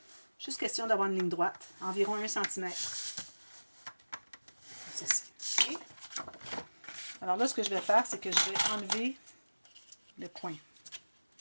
Juste question d'avoir une ligne droite. Environ 1 cm. Ceci. Okay. Alors là, ce que je vais faire, c'est que je vais enlever le coin.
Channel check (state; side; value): inverted; both; correlation -1.00